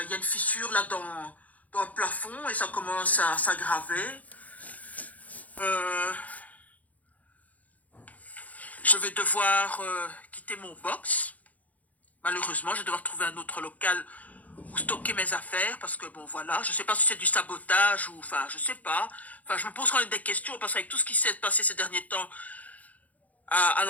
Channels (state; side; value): late; right; 0.074 ms